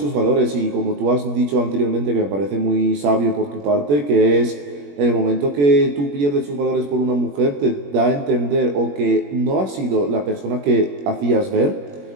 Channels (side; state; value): left; late; 21 ms